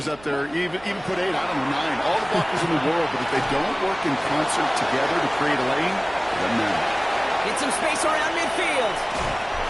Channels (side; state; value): right; noise; hum, 23 dB below the sound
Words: up there, even put 8, I don't know, 9. All the blockers in the world, but if they don't work in concert together to create a lane, it doesn't matter. Get some space around midfield.